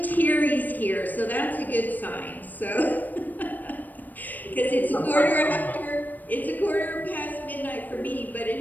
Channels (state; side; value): late; right; 0.087 ms